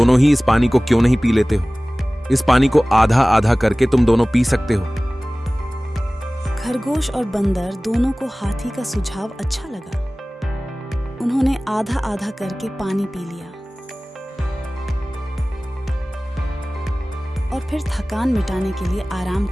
ही इस पानी को क्यों नहीं पी लेते हो? इस पानी को आधा आधा करके तुम दोनों पी सकते हो। खरगोश और बंदर दोनों को हाथी का सुझाव अच्छा लगा। उन्होंने आधा आधा करके पानी पी लिया और फिर थकान मिटाने के लिए आराम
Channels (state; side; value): normal; both; correlation 0.98